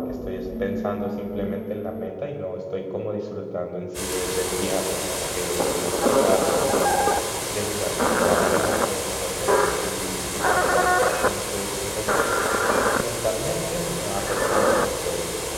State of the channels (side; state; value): both; identical; correlation 1.00